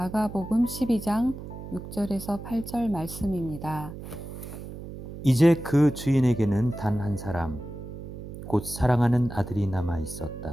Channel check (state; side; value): noise; right; hum, 11 dB below the sound